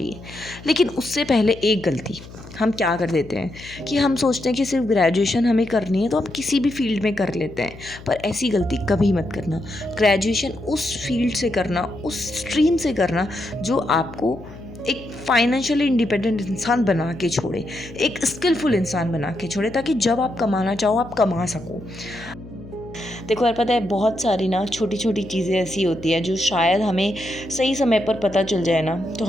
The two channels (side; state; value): left; noise; hum, 17 dB below the sound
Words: लेकिन उससे पहले एक गलती हम क्या कर देते हैं कि हम सोचते हैं कि सिर्फ ग्रेजुएशन हमें करनी है तो हम किसी भी फील्ड में कर लेते हैं, पर ऐसी गलती कभी मत करना। ग्रेजुएशन उस फील्ड से करना, उस स्ट्रीम से करना जो आपको एक फाइनेंशियली इंडिपेंडेंट इंसान बना के छोड़े, एक स्किलफुल इंसान बना के छोड़े, ताकि जब आप कमाना चाहो आप कमा सको। देखो यार, पता है बहुत सारी ना छोटी छोटी चीज़ें ऐसी होती है जो शायद हमें सही समय पर पता चल जाए ना, तो